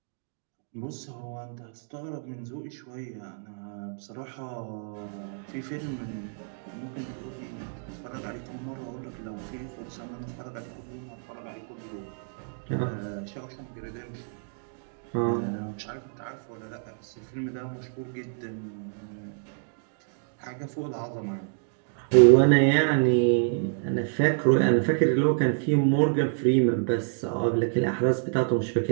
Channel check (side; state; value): left; silent; digital silence